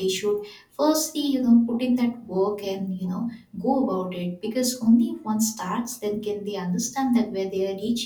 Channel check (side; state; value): both; identical; correlation 1.00